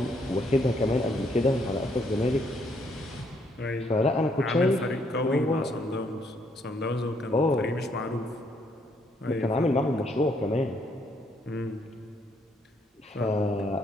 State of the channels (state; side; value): normal; both; correlation 0.71